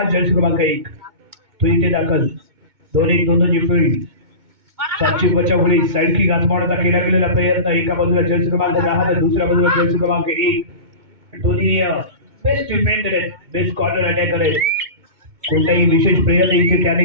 जर्सी क्रमांक 1 तो इथे दाखल. 2-1 फील्ड सातची बचावली साईड की घासमावण्याचा केला गेलेला प्रयत्न. एका बाजूला जर्सी क्रमांक 10 तर दुसऱ्या बाजूला जर्सी क्रमांक 1. दोन्ही बेस्ट डिफेंडर आहेत, बेस्ट कॉर्नर अटॅकर आहेत. कोणताही विशेष प्रयत्न इथे त्याने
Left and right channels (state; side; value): late; left; 2.2 ms